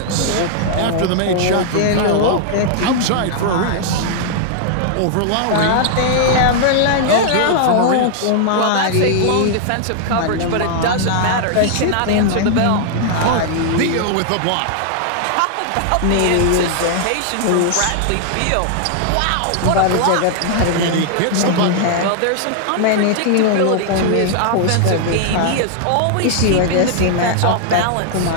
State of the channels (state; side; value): different; both; correlation -0.01